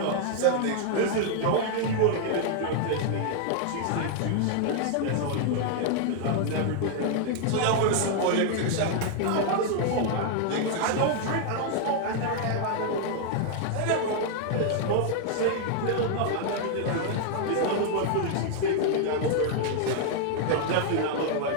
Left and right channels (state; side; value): different; both; correlation 0.00